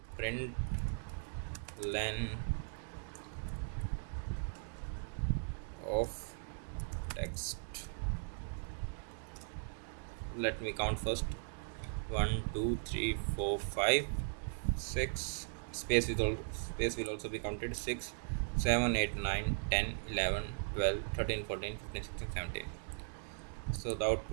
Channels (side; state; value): left; silent; digital silence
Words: print len of text. Let me count first. 1, 2, 3, 4, 5, 6, space will also be counted. 6, 7, 8, 9, 10, 11, 12, 13, 14, 15, 16, 17. So the